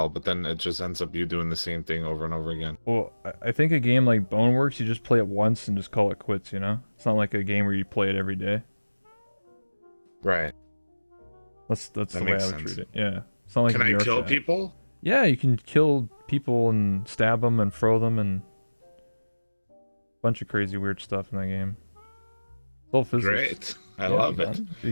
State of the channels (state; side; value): inverted; both; correlation -1.00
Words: but then it just ends up you doing the same thing over and over again. Well, I think a game like Boneworks, you just play it once and just call it quits. You know, it's not like a game where you play it every day. Right. That's the way I would treat it. Yeah. It's not like Can I VR kill Chat. people? Yeah, you can kill people and stab them and throw them and a bunch of crazy weird stuff in that game. It's all physics. Great. I love it.